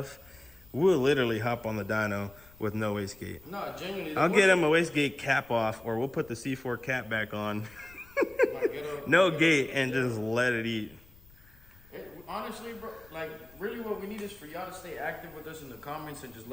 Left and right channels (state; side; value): noise; left; rumble, 25 dB below the sound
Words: We'll literally hop on the dyno with no wastegate. No, genuinely. I'll get him a wastegate cap off, or we'll put the C4 cap back on. No gate and just let it eat. Honestly, bro, like really what we need is for y'all to stay active with us in the comments and just